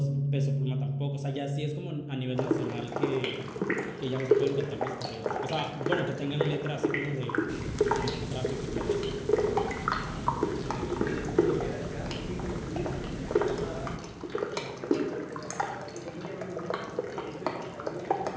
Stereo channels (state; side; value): identical; both; correlation 1.00